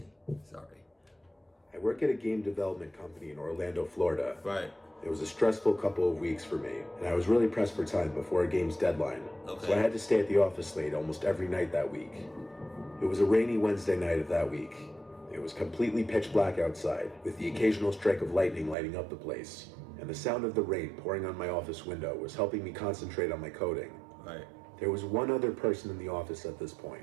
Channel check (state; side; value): drops out; left; at 18.8 s